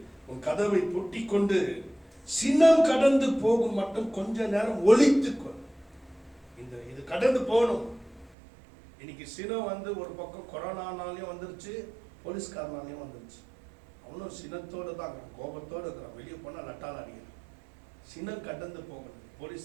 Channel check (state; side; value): drops out; left; at 8.3 s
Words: உன் கதவை பூட்டி கொண்டு சினம் கடந்து போகும் மட்டும் கொஞ்ச நேரம் ஒளித்துக்கொள். இது கடந்து போகணும். இன்னைக்கு சினம் ஒரு பக்கம் கொரோனானாலையும் வந்துருச்சு, போலீஸ்காரனாலையும் வந்துருச்சு. அவனும் சினத்தோடு தான் இருக்கிறான், கோபத்தோடு இருக்கிறான், வெளியே போனால் லட்டால் அடிக்கிறான். சினம் கடந்து போகணும்.